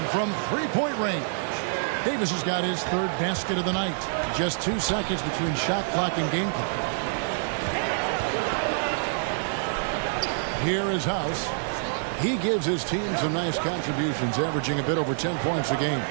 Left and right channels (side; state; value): left; silent; digital silence